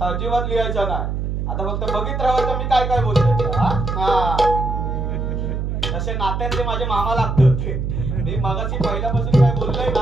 अजिबात लिहायचं नाही. आता फक्त बघित राहायचं मी काय काय बोलतोय. हा तसे नात्यात ते माझे मामा लागतात. मी मगाशी पहिल्यापासून काय बोललोय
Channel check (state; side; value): noise; right; hum, 2 dB below the sound